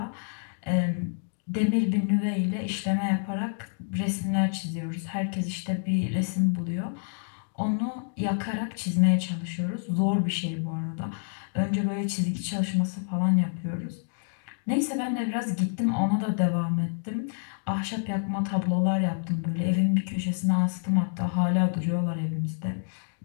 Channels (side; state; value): right; silent; digital silence